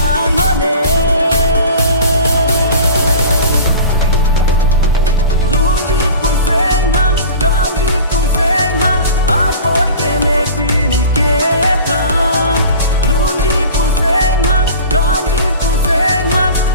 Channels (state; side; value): inverted; both; correlation -0.39